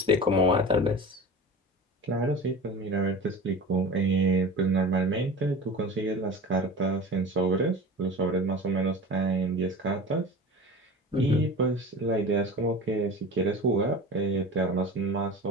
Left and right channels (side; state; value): both; normal; correlation 0.34